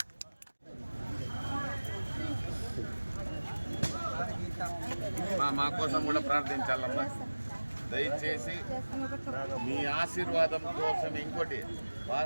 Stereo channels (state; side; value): inverted; both; correlation -1.00